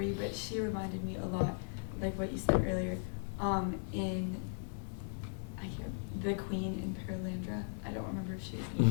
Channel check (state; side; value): silent; right; 53 dB below the other